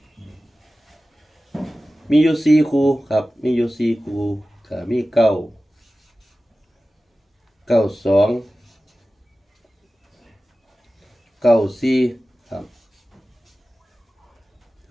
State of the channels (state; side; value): normal; both; correlation 0.95